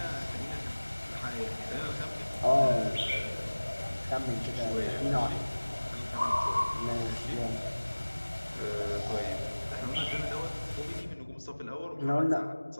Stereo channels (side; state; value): both; inverted; correlation -1.00